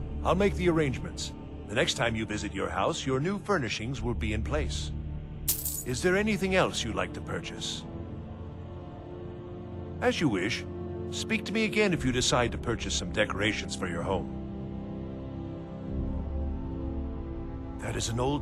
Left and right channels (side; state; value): both; identical; correlation 1.00